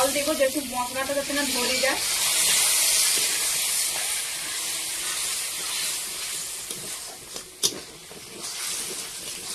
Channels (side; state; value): both; identical; correlation 1.00